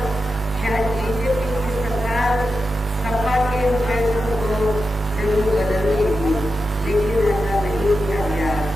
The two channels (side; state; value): both; normal; correlation 0.89